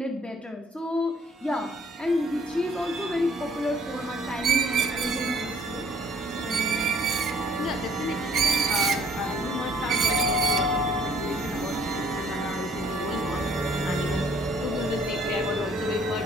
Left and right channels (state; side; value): normal; both; correlation 0.59